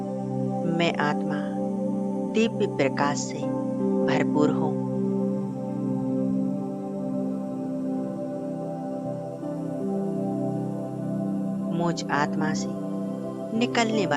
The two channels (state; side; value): identical; both; correlation 1.00